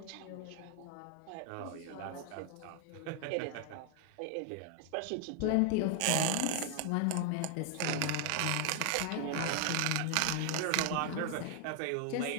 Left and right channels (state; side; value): different; both; correlation 0.00